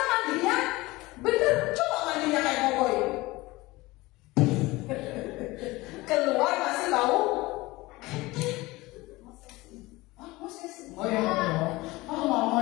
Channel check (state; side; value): quieter; right; 20.8 dB